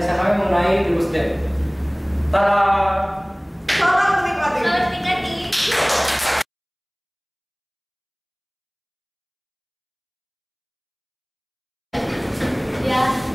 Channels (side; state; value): both; identical; correlation 1.00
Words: kami mengenai DeGusDev. Tada! Selamat menikmati. Selamat menikmati. Ya,